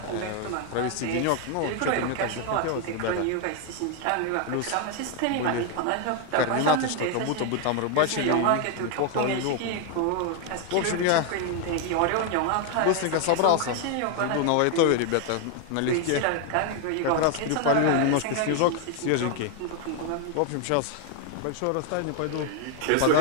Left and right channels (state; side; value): different; both; correlation 0.01